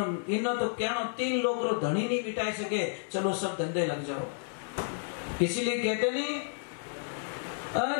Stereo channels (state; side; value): silent; right; digital silence